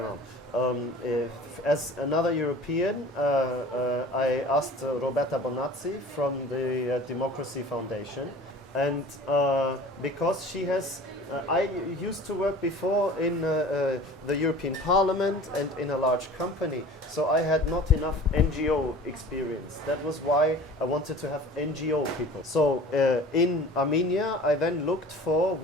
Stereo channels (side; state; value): both; normal; correlation 0.43